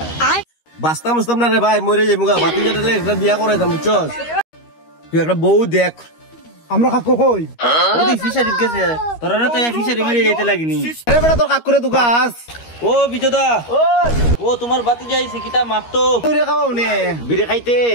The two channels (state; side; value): late; right; 13 ms